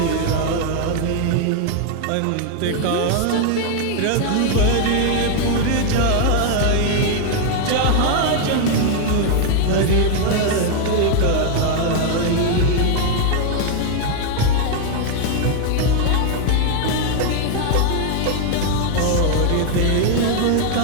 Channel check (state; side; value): different; both; correlation 0.00